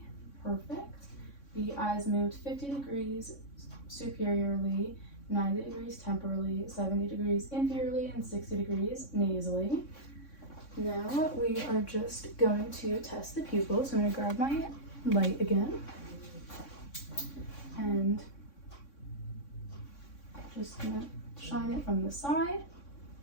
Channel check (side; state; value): right; late; 3.6 ms